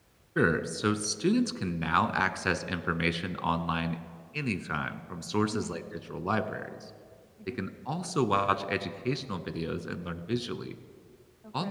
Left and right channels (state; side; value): identical; both; correlation 1.00